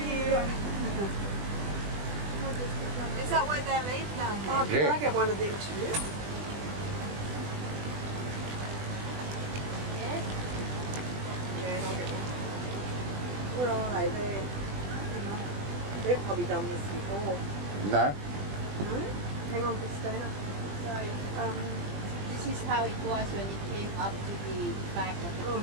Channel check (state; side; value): late; left; 20 ms